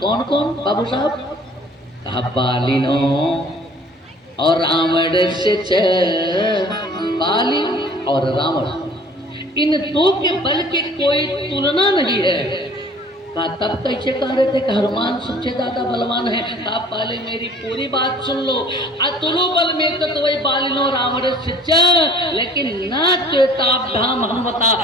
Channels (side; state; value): both; normal; correlation 0.51